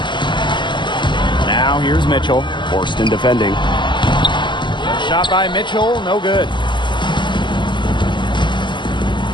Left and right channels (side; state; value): right; late; 0.23 ms